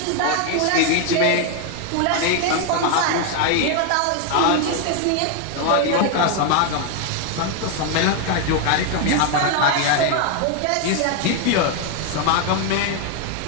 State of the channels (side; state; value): both; different; correlation 0.01